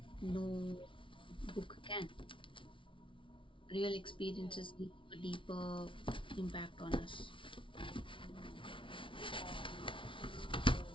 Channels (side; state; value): right; late; 0.25 ms